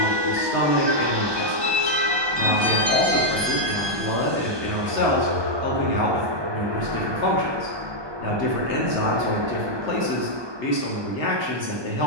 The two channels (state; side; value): late; left; 1.2 ms